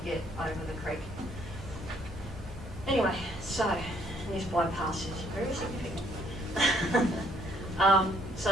get over the creek. Anyway, so this bypass is very significant.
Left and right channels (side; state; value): both; normal; correlation 0.66